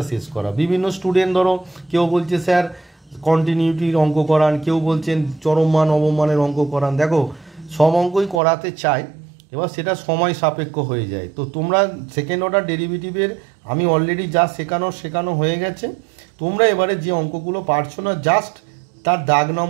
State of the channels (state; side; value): drops out; left; at 8.4 s